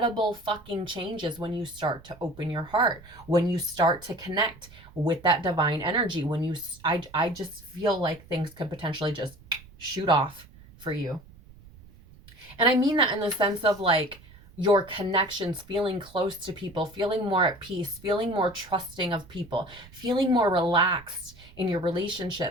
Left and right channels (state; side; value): noise; right; rumble, 22 dB below the sound